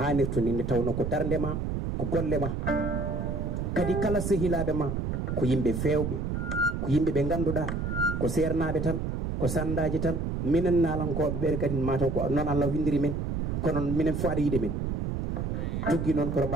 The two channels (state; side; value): noise; right; rumble, 2 dB below the sound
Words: ni nde tawno ko darde ma ko golle ma kadi kala sehilaɓe ma ko yimɓe fewɓe ko yimɓe ɓe ganduɗa ko sernaɓe tan ko sandaji tan minen nalankoɓe ɓere kadi mataw ko noon Allah windiri men kono minen fo aɗa yiɗe men tuggi noon koto